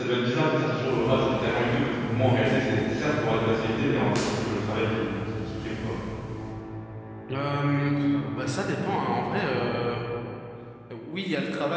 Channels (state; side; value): identical; both; correlation 1.00